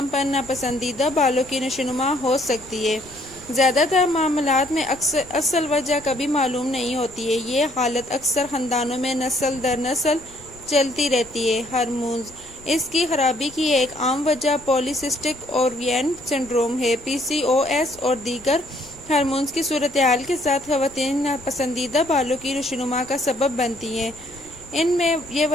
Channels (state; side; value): noise; left; rumble, 23 dB below the sound